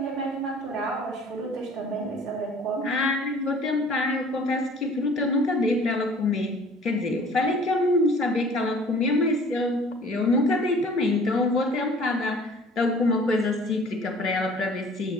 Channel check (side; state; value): both; normal; correlation 0.50